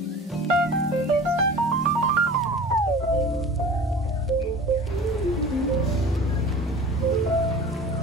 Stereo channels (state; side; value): normal; both; correlation 0.40